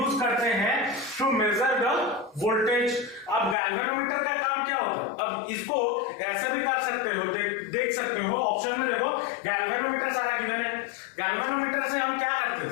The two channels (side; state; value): right; drops out; at 3.6 s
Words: करते हैं टू मेजर द वोल्टेज। अब गैल्वेनोमीटर का काम क्या होता है, अब इसको ऐसे भी कर सकते हो, देख सकते हो ऑप्शन में, देखो गैल्वेनोमीटर सारा गिवन है। गैल्वेनोमीटर से हम क्या करते